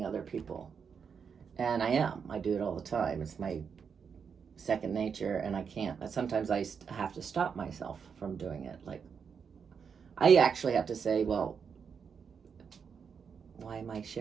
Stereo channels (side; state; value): left; quieter; 6.5 dB